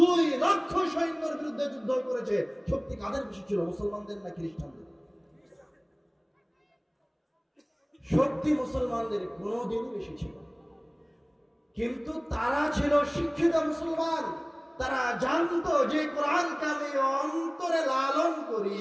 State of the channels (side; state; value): both; identical; correlation 1.00